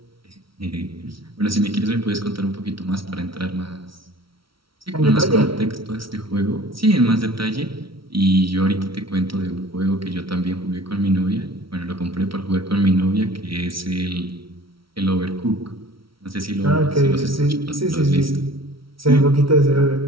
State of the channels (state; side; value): late; left; 0.75 ms